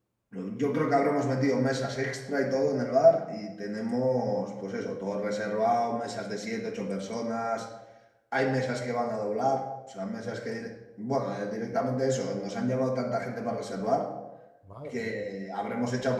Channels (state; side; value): identical; both; correlation 1.00